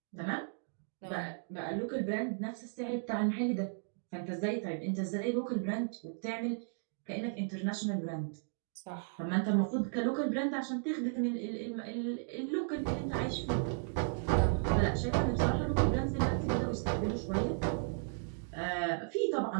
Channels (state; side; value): silent; left; digital silence